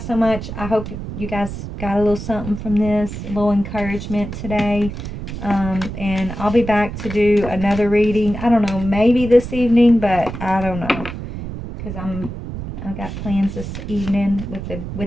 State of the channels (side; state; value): right; noise; rumble, 8 dB below the sound